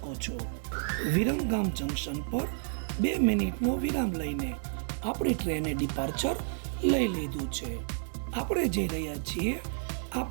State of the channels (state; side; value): silent; left; digital silence